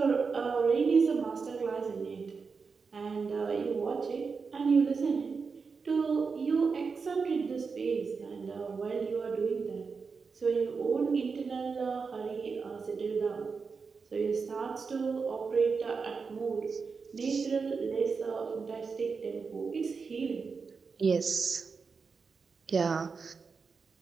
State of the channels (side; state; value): left; quieter; 5.1 dB